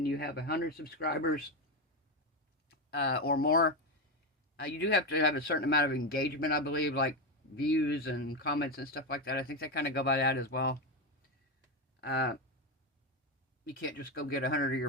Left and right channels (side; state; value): both; normal; correlation 0.12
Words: you have 100 subscribers or more, you do have to have a certain amount of engagement, I believe, like views and comments and stuff like that. I think they kind of go by that as well. You can't just go get 100 of